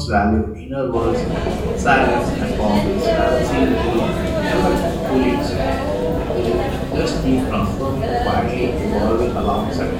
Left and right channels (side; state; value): both; identical; correlation 1.00